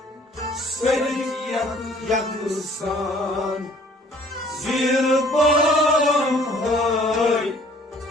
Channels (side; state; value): both; normal; correlation 0.55